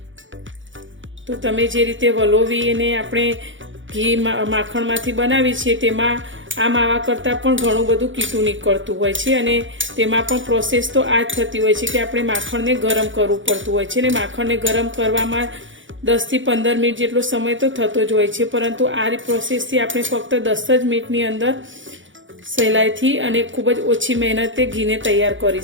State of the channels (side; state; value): left; late; 0.56 ms